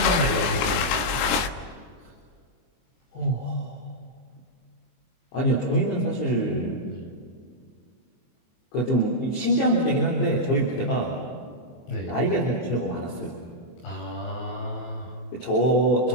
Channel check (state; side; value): late; right; 24 ms